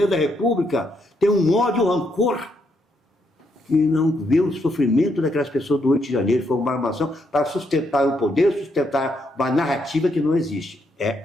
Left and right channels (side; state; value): both; normal; correlation 0.77